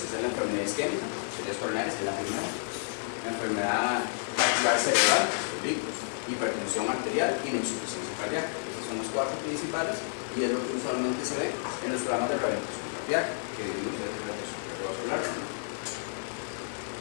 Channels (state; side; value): silent; right; 58 dB below the other